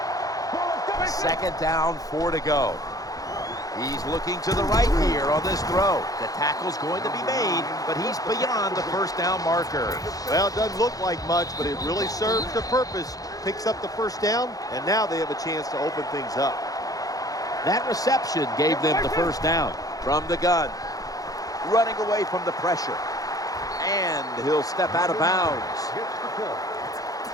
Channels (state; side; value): late; right; 0.17 ms